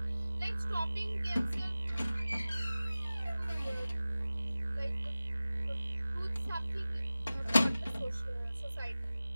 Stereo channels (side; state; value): both; inverted; correlation -0.97